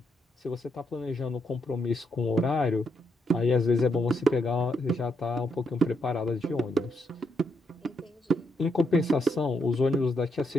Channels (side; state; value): both; normal; correlation 0.79